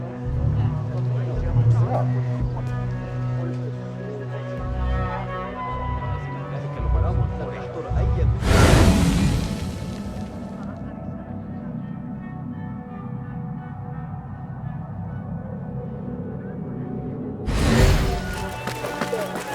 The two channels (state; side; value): identical; both; correlation 1.00